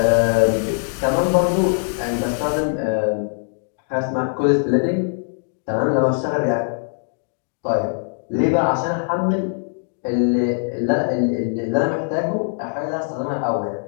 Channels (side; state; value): right; silent; 59 dB below the other